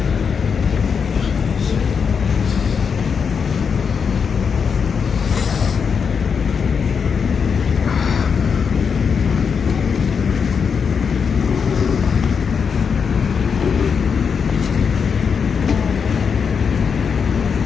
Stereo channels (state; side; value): quieter; right; 6.2 dB